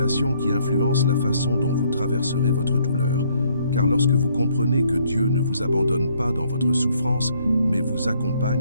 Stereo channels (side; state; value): both; inverted; correlation -0.67